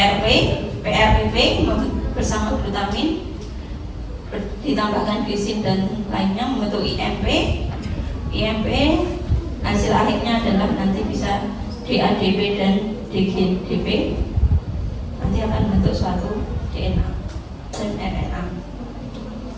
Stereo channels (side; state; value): both; identical; correlation 1.00